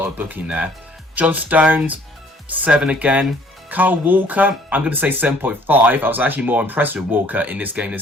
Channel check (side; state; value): both; normal; correlation 0.58